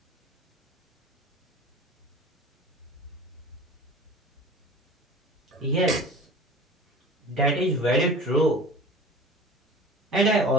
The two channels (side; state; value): both; normal; correlation 0.40